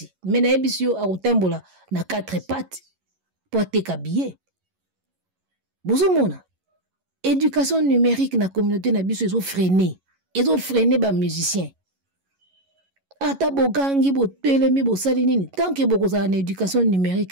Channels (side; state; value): left; late; 11 ms